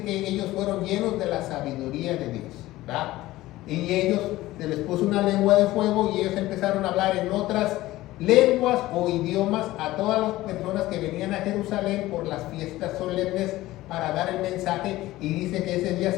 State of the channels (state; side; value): quieter; right; 17.0 dB